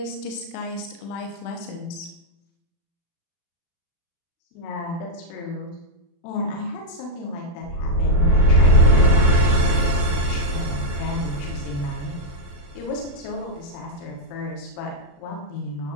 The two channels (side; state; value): right; late; 35 ms